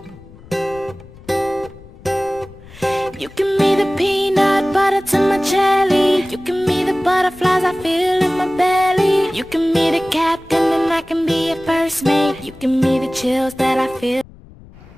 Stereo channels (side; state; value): left; noise; rumble, 21 dB below the sound